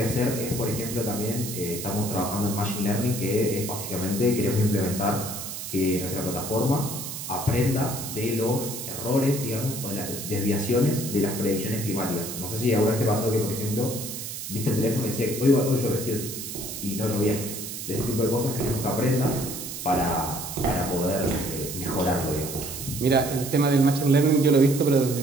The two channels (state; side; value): noise; right; hiss, 7 dB below the sound